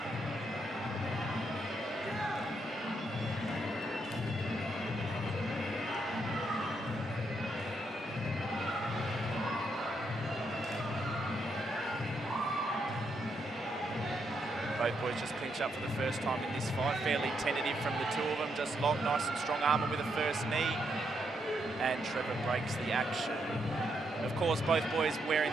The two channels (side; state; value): both; normal; correlation 0.78